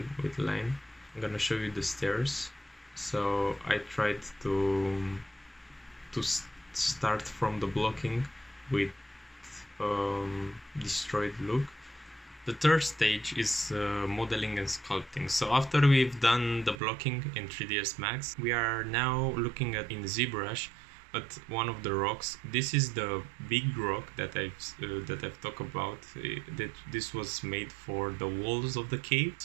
with line. I'm gonna show you the stairs. So I tried to start from the blocking with destroyed look. The third stage is modeling and sculpting. So after we've done the blocking in 3ds Max, we are now looking at in ZBrush at one of the rocks. This is the big rock that I've talked about. That this was made for the walls of the cave.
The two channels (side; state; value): left; drops out; at 16.8 s